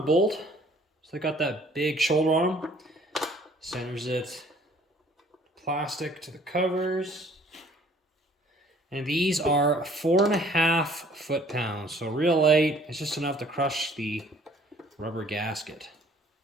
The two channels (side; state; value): both; normal; correlation 0.57